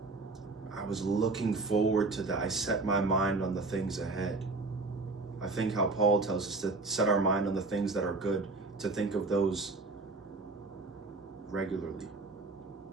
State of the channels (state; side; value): quieter; left; 3.5 dB